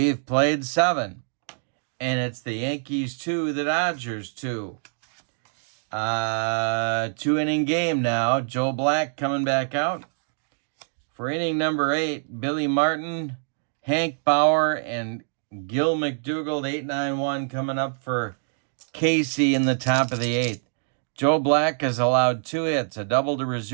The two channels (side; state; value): left; silent; digital silence